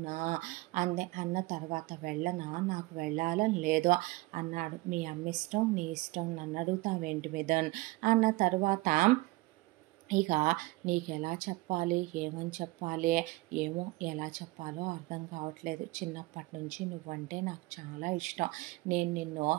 అంది. అన్న తర్వాత వెళ్ళనా, నాకు వెళ్ళాలని లేదు అన్నాడు. మీ అమ్మ ఇష్టం, నీ ఇష్టం, నన్ను అడుగుతావేంటి మిథున్ అన్న తర్వాత ఇక నీకు ఎలా చెప్పాలి, ఏమని చెప్పాలి, ఏమో ఎలా చెప్పాలో అర్థం కావట్లేదు, చిన్నప్పటి నుంచి నువ్వంటే నాకు చాలా ఇష్టం, నేను నిన్ను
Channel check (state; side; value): quieter; left; 21.3 dB